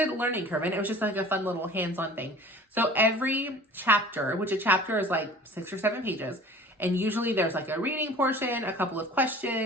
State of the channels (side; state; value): both; normal; correlation 0.45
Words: learning curve, and it was just like a fun little hands-on thing. So every chapter, which a chapter is like 6 or 7 pages, and usually there's like a reading portion, a couple of